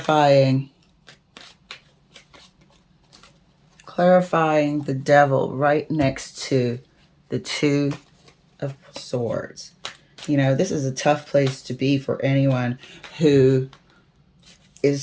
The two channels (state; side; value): identical; both; correlation 1.00